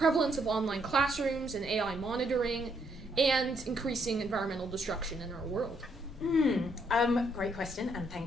of online classrooms and AI monitoring, and increasing environmental destruction in our world? Great question, and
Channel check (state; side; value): normal; both; correlation 0.73